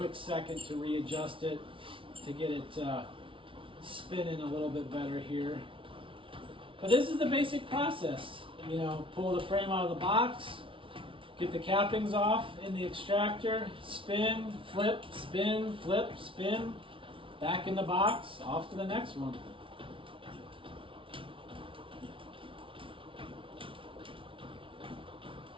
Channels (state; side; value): late; left; 0.25 ms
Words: second to readjust it to get it spinning a little bit better here. But this is the basic process. Pull the frame out of the box, get the cappings off in the extractor, spin, flip, spin, flip, spin, back in the box, off to the next one.